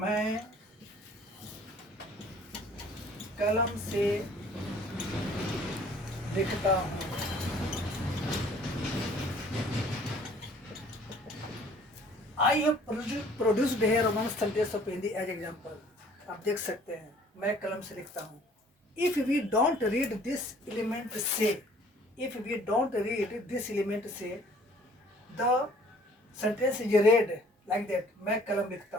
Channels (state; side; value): normal; both; correlation 0.55